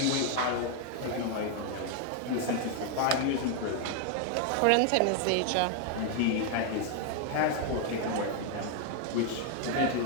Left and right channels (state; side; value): different; both; correlation 0.00